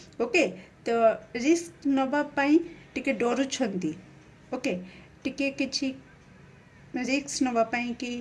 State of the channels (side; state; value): both; identical; correlation 1.00